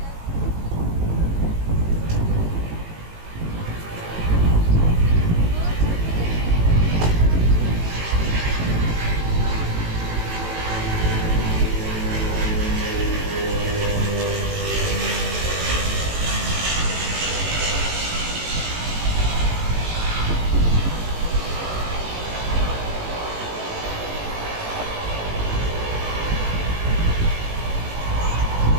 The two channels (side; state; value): left; late; 18 ms